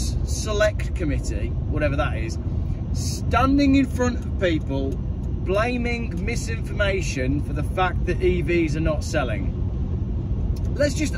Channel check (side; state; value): both; identical; correlation 1.00